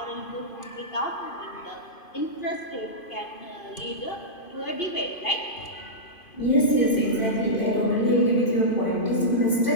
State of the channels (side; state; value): right; late; 2.5 ms